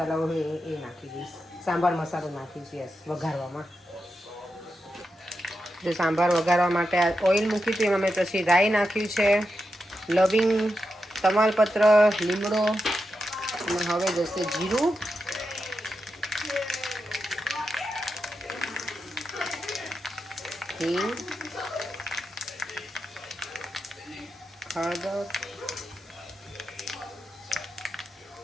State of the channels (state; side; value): normal; both; correlation 0.88